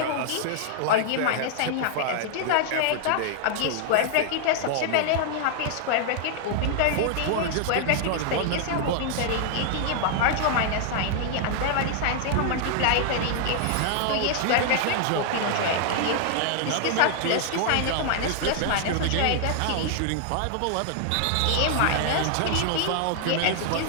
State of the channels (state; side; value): different; both; correlation 0.00